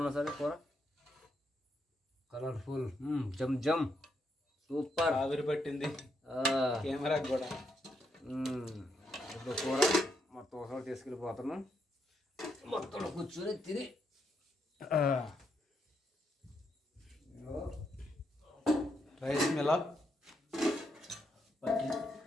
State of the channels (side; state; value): both; normal; correlation 0.79